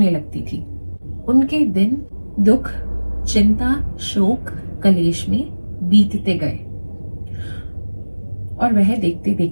लगती थी। उनके दिन दुख, चिंता, शोक, कलेश में बीतते गए और वह देखते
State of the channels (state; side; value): inverted; both; correlation -1.00